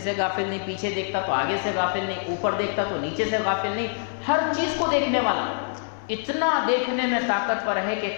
سے غافل نہیں، پیچھے دیکھتا تو آگے سے غافل نہیں، اوپر دیکھتا تو نیچے سے غافل نہیں، ہر چیز کو دیکھنے والا. اتنا دیکھنے میں طاقتور ہے کہ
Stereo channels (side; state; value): right; silent; digital silence